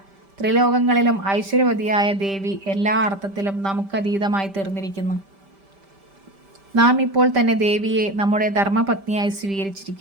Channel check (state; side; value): late; left; 5.1 ms